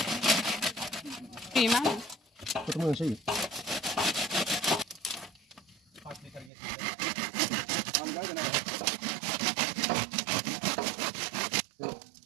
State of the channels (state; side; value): drops out; left; at 6.5 s